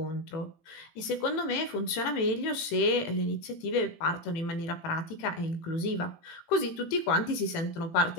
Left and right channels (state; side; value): late; right; 18 ms